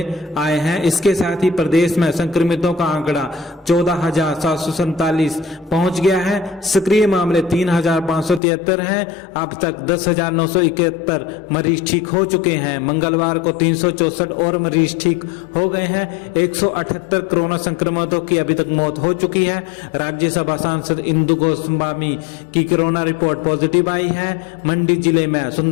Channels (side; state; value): right; drops out; at 8.4 s